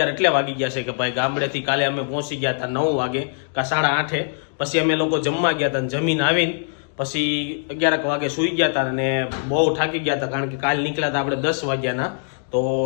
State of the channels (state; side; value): silent; right; digital silence